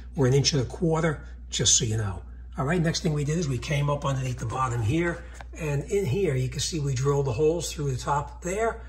or 1.25 inches, just so you know. All right, next thing we did is we came up underneath the bottom here. And in here, you can see we drilled the holes through the top there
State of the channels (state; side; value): identical; both; correlation 1.00